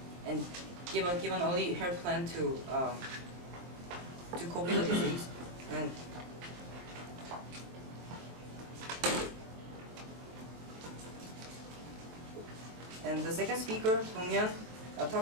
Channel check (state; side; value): late; left; 23 ms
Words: and give an early hair plan to cope with the disease. And the second speaker, Dong-Yeon,